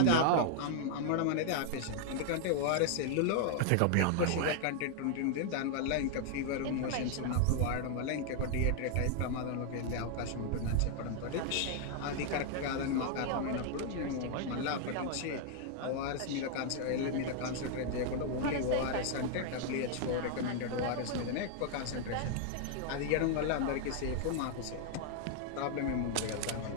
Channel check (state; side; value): different; both; correlation 0.00